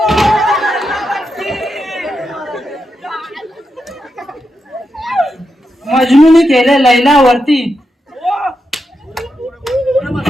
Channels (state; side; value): normal; both; correlation 0.86